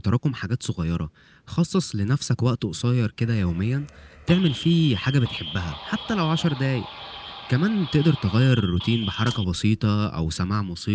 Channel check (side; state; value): both; identical; correlation 1.00